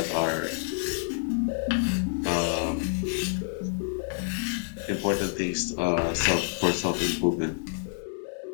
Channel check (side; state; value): right; silent; 59 dB below the other